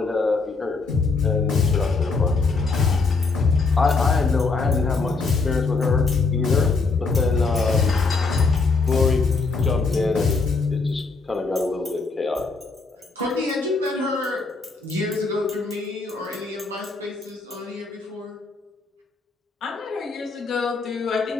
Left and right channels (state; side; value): quieter; right; 4.1 dB